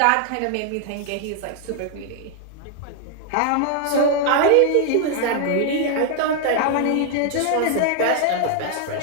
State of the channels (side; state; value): both; different; correlation 0.00